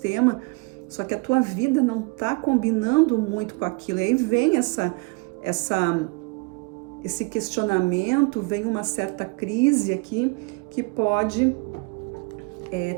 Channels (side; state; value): left; quieter; 28.9 dB